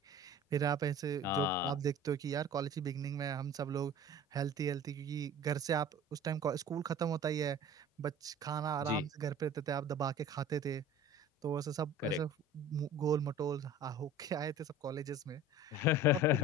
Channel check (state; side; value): normal; both; correlation 0.41